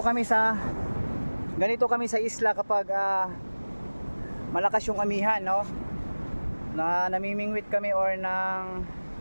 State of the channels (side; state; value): both; inverted; correlation -1.00